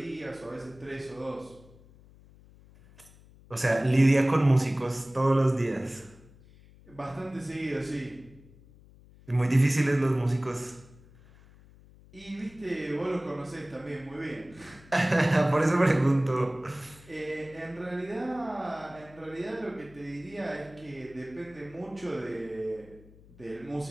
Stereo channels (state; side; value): noise; left; hum, 24 dB below the sound